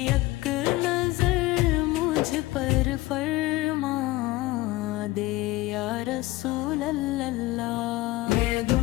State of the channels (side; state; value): right; quieter; 18.5 dB